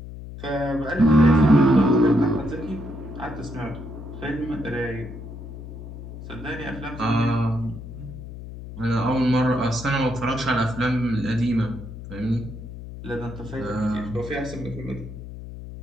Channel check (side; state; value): left; noise; hum, 12 dB below the sound